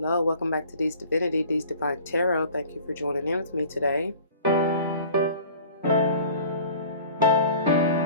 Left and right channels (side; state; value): both; inverted; correlation -0.46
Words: Welcome back to D's Divinity, D's Divine Tarot. Thank you for joining in with me today.